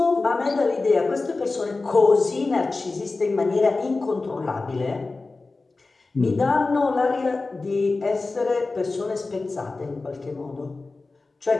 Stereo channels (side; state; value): right; quieter; 3.6 dB